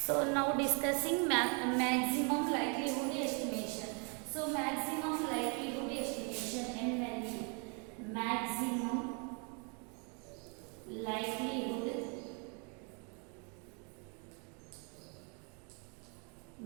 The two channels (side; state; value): left; quieter; 36.1 dB